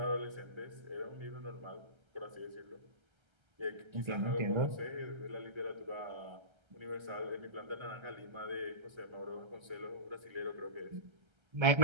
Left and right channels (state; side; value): late; left; 1.3 ms